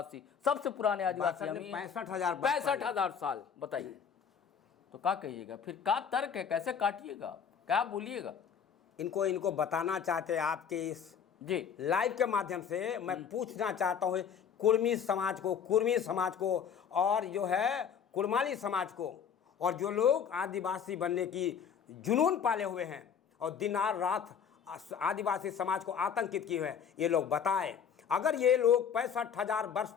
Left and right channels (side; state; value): right; quieter; 7.4 dB